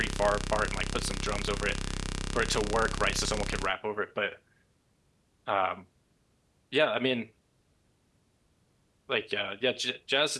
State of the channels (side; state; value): both; identical; correlation 1.00